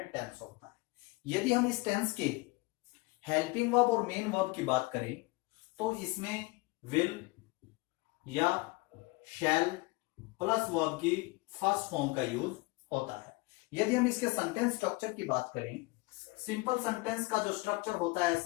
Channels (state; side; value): quieter; right; 24.2 dB